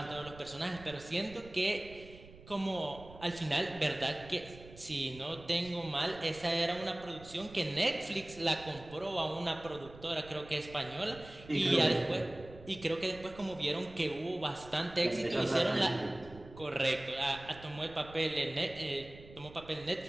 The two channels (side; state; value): right; noise; rumble, 18 dB below the sound